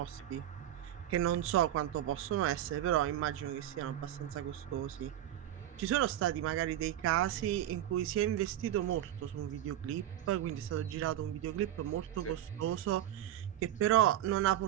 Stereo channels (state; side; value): quieter; left; 12.2 dB